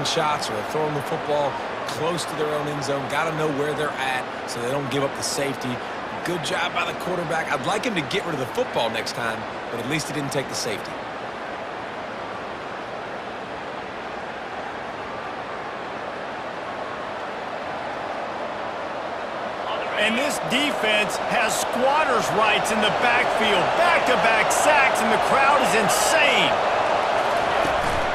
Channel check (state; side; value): identical; both; correlation 1.00